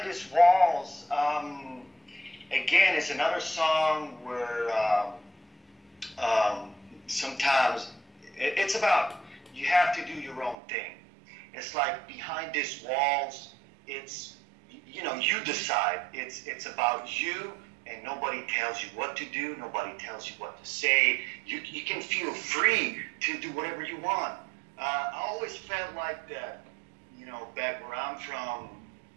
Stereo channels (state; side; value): drops out; left; at 10.6 s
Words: These Walls, again, it's another song where sometimes it's about you have to do your own thing. It's like behind these walls, it's, you know, you decide. It's about you, and nobody tells you what to do. Nobody tells you what to say. You can feel free to do whatever you want. I always felt like that, you know, back where I'm from,